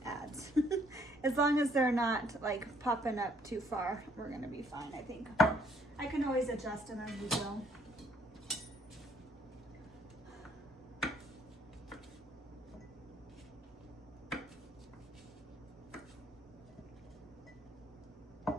adds. As long as they're not like popping up too far, we're gonna be fine, I think. I can always adjust them as we go.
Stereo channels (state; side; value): normal; both; correlation 0.65